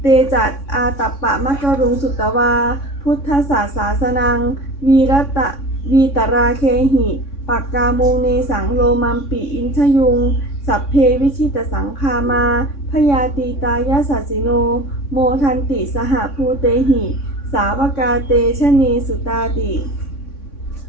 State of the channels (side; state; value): right; late; 3.6 ms